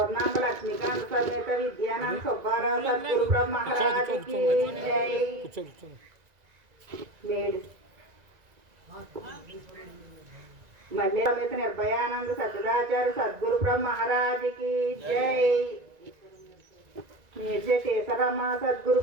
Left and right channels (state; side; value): late; left; 1.9 ms